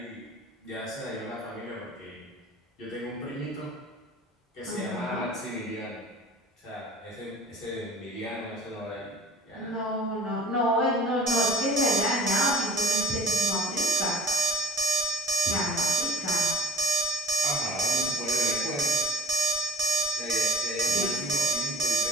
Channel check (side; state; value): both; normal; correlation 0.45